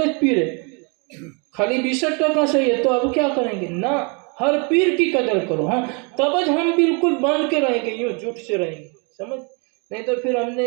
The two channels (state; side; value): quieter; left; 33.9 dB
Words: پی رہے، خالی 62% صحیح ہے. تو اب کیا کریں گے؟ نہ، ہر پیر کی قدر کرو. ہاں تب ہم بالکل باندھ کے رہیں گے، یوں جھوٹ سے رہیں گے. سمجھ؟ نہیں تو پھر ہم